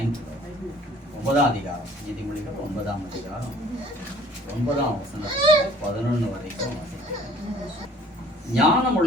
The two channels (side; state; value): both; normal; correlation 0.54